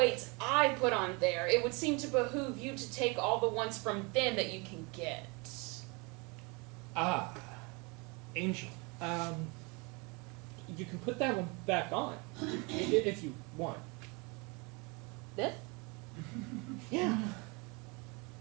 I put on there, it would seem to behoove you to take all the ones from them that you can get. Ah. Angel. You can put that one back on. If you want. This? Yeah.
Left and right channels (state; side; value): quieter; left; 29.3 dB